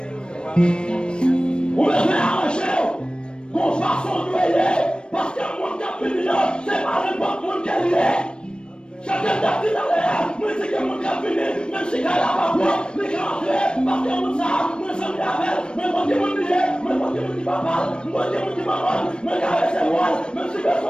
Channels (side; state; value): right; late; 0.054 ms